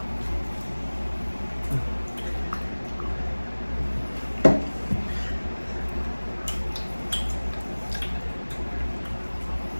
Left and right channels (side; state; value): both; inverted; correlation -1.00